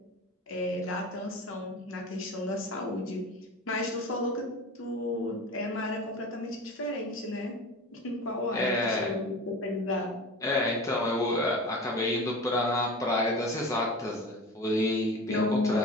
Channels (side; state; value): both; normal; correlation 0.33